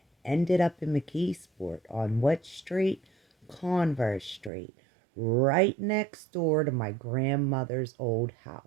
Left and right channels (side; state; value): left; drops out; at 4.5 s